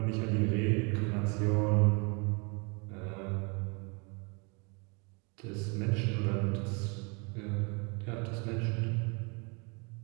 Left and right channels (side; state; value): left; quieter; 32.3 dB